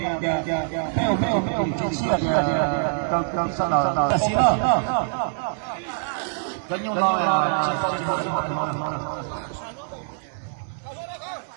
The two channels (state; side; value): silent; left; 62 dB below the other